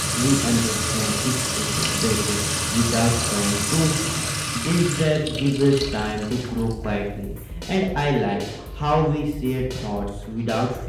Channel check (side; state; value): both; identical; correlation 1.00